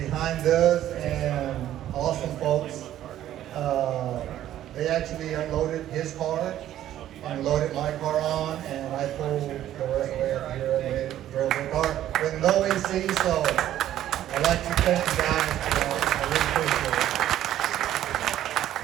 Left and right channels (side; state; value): left; quieter; 12.3 dB